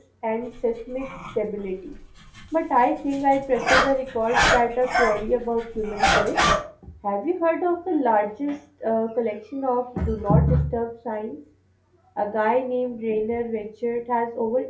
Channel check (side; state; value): both; identical; correlation 1.00